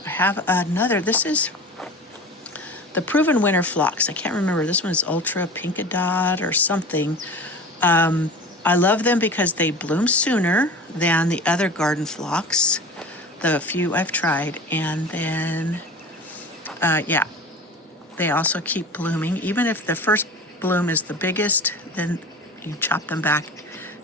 I have another. This is the Proven Winter Phlox. I can't remember. This one is Ultra Pinkadot or something. I love them because they bloom sooner than the other garden phlox, the few I've tried. And then Yeah, they also keep blooming. Even if the first bloom is the biggest, then you chop them back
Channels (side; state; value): both; normal; correlation 0.35